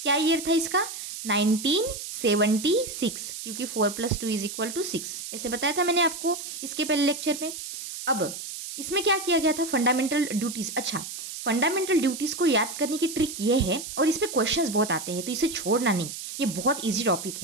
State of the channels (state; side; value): noise; right; hiss, 8 dB below the sound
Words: क्या ईयर था इसका? 1976, क्योंकि 4 + 2 = 6। ऐसे बताया था मैंने आपको इसके पहले लेक्चर में। अब इसमें क्या किया गया था, फंडामेंटल ड्यूटीज़। अच्छा, फंडामेंटल ड्यूटीज़ को याद करने की ट्रिक ये है, और इस पे क्वेश्चंस बहुत आते हैं तो इसे छोड़ना नहीं, ये बहुत इजी टॉपिक